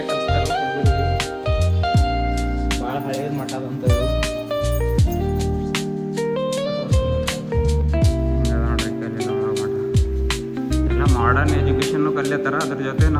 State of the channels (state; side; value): identical; both; correlation 1.00